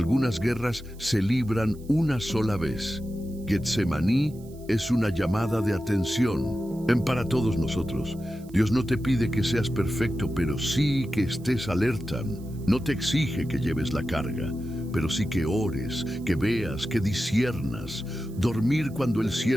guerras se libran una sola vez. Getsemaní es una llamada de atención para todos nosotros. Dios no te pide que seas perfecto, pero sí que estés alerta. No te exige que lleves la carga, pero sí que ores, que veas, que disciernas. Dormir cuando el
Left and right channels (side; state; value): right; noise; hiss, 26 dB below the sound